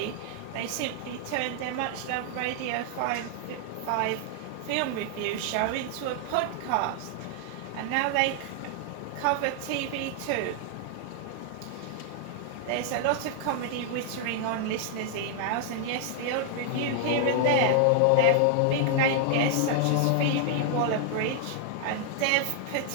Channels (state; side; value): different; both; correlation 0.00